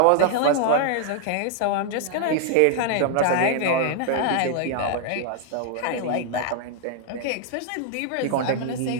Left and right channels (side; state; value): both; different; correlation 0.00